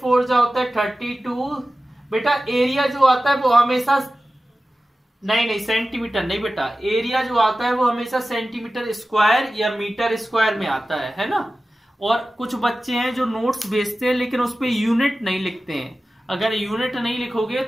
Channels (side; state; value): both; normal; correlation 0.95